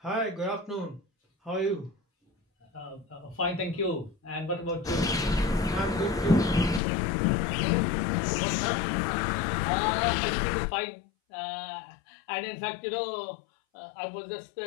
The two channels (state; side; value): drops out; right; at 6.8 s